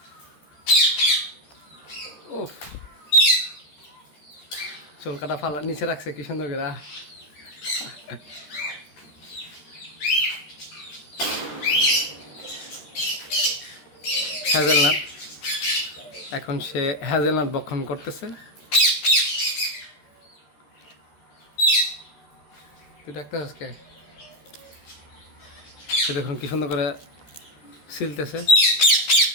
উফ, চুল কাটা ফালা নিচে রাখছে কি সুন্দর করে। হ্যাজেলনাট, এখন সে হ্যাজেলনাট ভক্ষণ করতেছে। তুই ডাক্তার আজকে সে দেখুন কি সুন্দর করে সিলতেছে।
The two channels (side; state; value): right; late; 13 ms